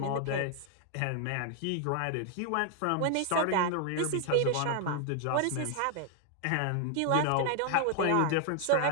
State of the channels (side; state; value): both; different; correlation 0.00